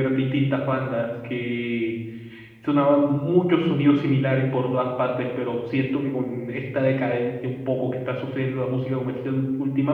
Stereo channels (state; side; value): identical; both; correlation 1.00